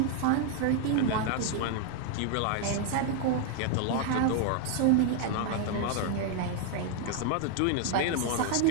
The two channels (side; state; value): both; different; correlation 0.00